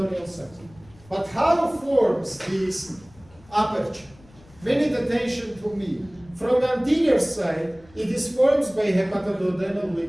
sac. But how forms this aperture? Pay attention to me. From anterior side, it is formed by hepatoduodenal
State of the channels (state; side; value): noise; left; rumble, 26 dB below the sound